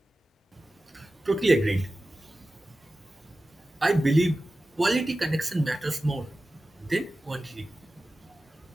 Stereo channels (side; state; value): both; normal; correlation 0.95